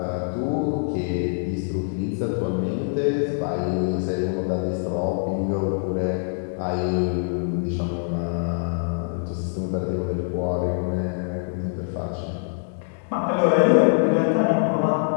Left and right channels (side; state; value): right; silent; digital silence